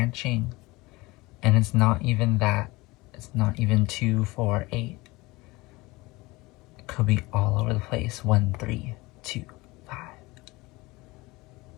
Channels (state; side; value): quieter; right; 22.0 dB